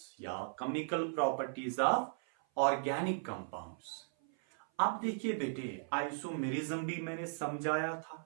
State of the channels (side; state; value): left; silent; 53 dB below the other